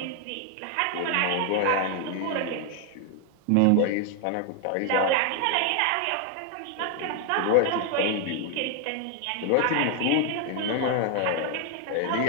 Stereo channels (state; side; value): different; both; correlation 0.01